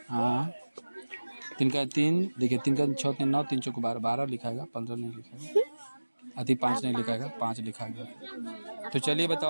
हाँ, 3 का 3 देखिए, 3 का 6 3 9, 3 चौको 12, 12 लिखाएगा, 15 नहीं लिखाएगा, अति 5 नहीं लिखाएगा, 5 लिखा गया। तो चलिए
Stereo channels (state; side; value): inverted; both; correlation -1.00